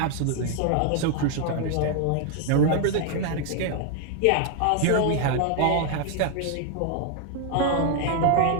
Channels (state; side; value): different; both; correlation 0.00